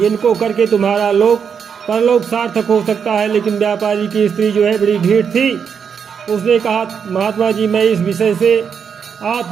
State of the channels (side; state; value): left; quieter; 6.9 dB